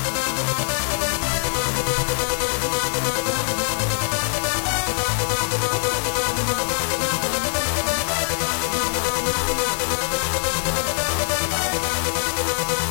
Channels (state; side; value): silent; right; digital silence